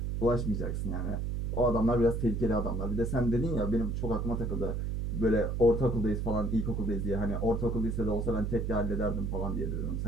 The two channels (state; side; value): noise; right; hum, 1 dB below the sound